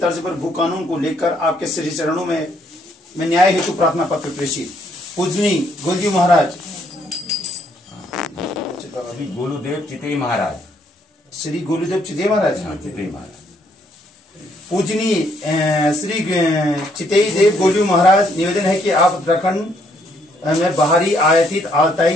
पर भू कानून को लेकर आपके श्री चरणों में न्याय हेतु प्रार्थना पत्र प्रेषित। पूजनी गोलजी महाराज श्री गोलूदेव चितई महाराज, श्री गोलूदेव चितई महाराज, चितई महाराज पूजनी श्री चितई देव गोलू महाराज, निवेदन है कि आप उत्तराखंड में बाहरी आयातित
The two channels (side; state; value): both; normal; correlation 0.69